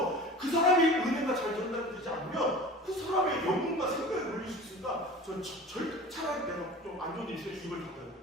그 사람의 은혜가 잘 전달되지 않으면 그 사람의 영혼과 생각에 걸릴 수 있으니까 전 차라리 내가 좀 안 좋은 일이 있어요. 입을 닫아요.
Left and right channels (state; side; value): normal; both; correlation 0.38